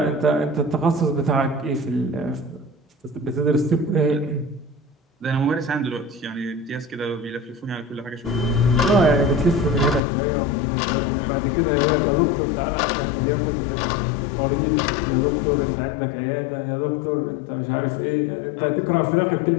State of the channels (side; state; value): right; drops out; at 10.0 s